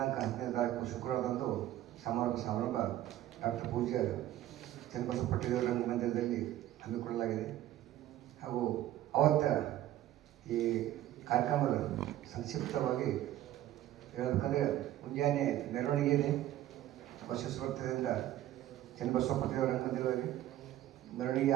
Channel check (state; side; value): quieter; left; 13.5 dB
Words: 10ನೇ ತಾರೀಕು ಶುಕ್ರವಾರದಂದು ಸಮಾರಂಭ ಡಾಕ್ಟರ್ ಪೂಜ್ಯ ಚನ್ನಬಸವ ಪಟ್ಟೇದಾರ್ ರಂಗಮಂದಿರದಲ್ಲಿ ಹಮ್ಮಿಕೊಳ್ಳಲಾಗಿದೆ. ಹಾಗೂ ಅವತ್ತ ಈ ಕಾರ್ಯಕ್ರಮದ ಸಂಕ್ಷಿಪ್ತವಾಗಿ ಹೇಳಬೇಕಂದ್ರೆ ಮುಂಜಾನೆ ಮೆರವಣಿಗೆ ಇದೆ. ಬಸವೇಶ್ವರ ವೃತ್ತದಿಂದ ಚನ್ನಬಸವ ಪಟ್ಟೇದಾರ್ ರಂಗಮಂದಿರದಲ್ಲಿ ಮೆರವಣಿಗೆ